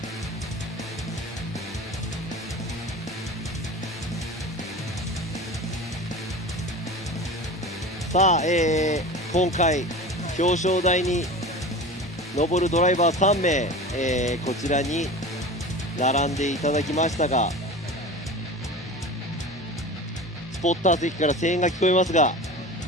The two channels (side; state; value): both; normal; correlation 0.33